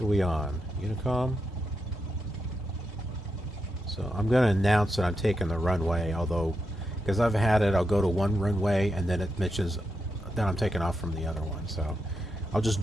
are we on? Unicom? So I'm going to announce that I'm taking the runway, although, because I've had it, I'll go to one runway and then it mentions that I'm taking off from the other one. So I'll just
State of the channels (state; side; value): normal; both; correlation 0.85